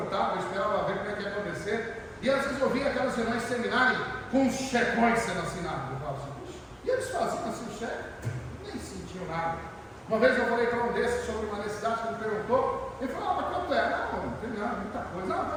eu esperava ver como é que ia acontecer. E às vezes eu via aquelas reuniões terminarem com os checões sendo assinados. Eu falava assim, puxa, e eles faziam assim o cheque? Nem sentiam nada. Uma vez eu falei para um desses sobre uma necessidade que ele perguntou, ele falou, mas quanto é? Não tem nada, muita coisa. Não,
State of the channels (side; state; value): both; identical; correlation 1.00